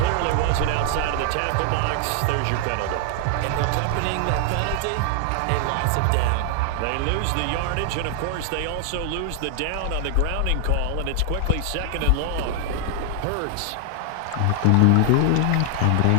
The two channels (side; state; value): both; different; correlation 0.00